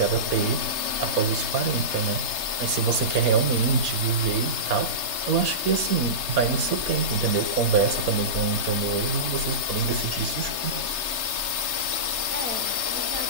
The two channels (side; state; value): left; late; 3.3 ms